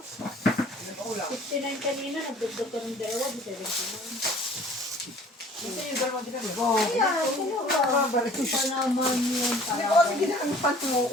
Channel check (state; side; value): normal; both; correlation 0.51